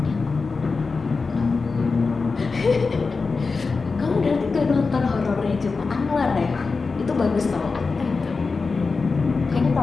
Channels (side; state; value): right; quieter; 4.4 dB